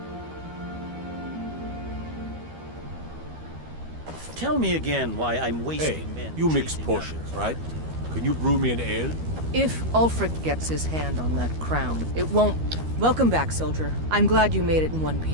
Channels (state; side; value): late; left; 13 ms